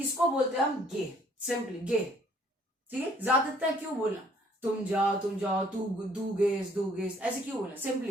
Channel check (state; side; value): normal; both; correlation 0.61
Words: बोलते हैं हम गे, सिंपली गे, ठीक है। ज्यादातर क्यों बोलना, तुम जाओ, तू दू गेस ऐसे क्यों बोलना,